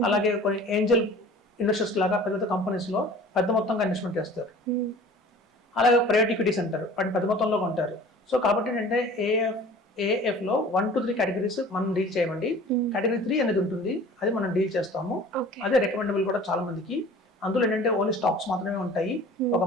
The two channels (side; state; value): both; normal; correlation 0.45